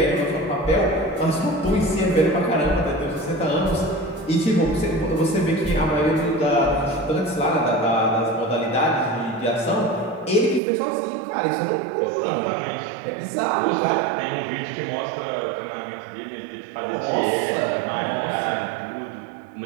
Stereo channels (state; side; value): drops out; left; at 10.6 s